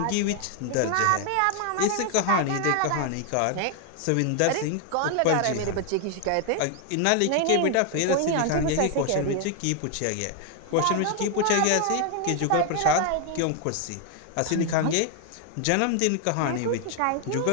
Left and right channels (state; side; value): different; both; correlation 0.00